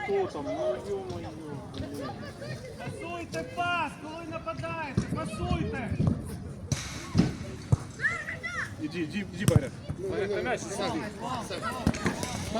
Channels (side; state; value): both; identical; correlation 1.00